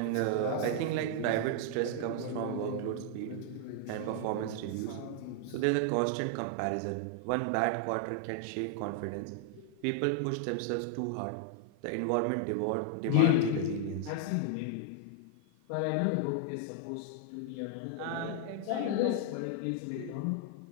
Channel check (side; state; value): both; different; correlation 0.00